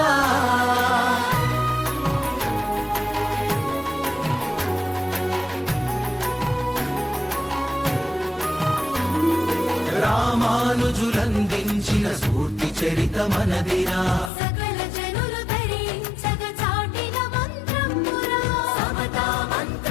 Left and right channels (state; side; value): drops out; right; at 14.3 s